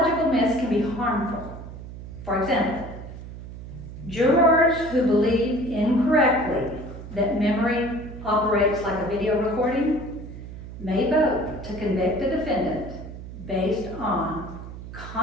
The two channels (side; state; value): right; noise; hum, 12 dB below the sound